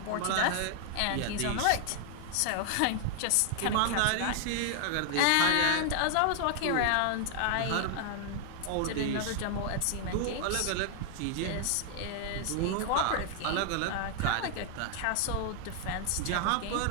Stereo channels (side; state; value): both; different; correlation 0.00